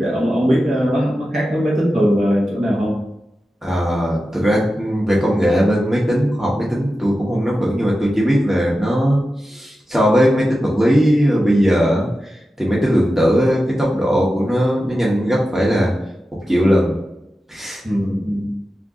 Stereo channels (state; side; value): normal; both; correlation 0.92